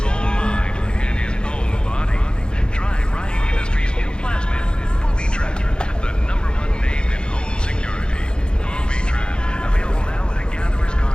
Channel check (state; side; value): late; right; 0.050 ms